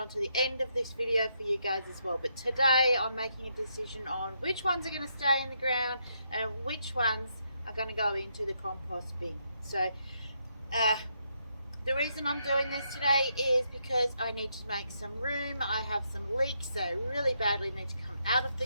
the end of this video for you guys as well. But today I'm making a decision on which ones are going to stay in the ground and which ones are going to go into the compost bin. So the reason I'm doing this today is because I need to make some room. I have some leeks that really badly need to come out of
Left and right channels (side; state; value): both; inverted; correlation -0.78